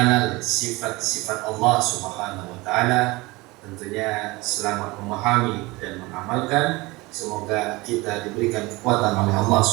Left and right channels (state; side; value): quieter; left; 22.5 dB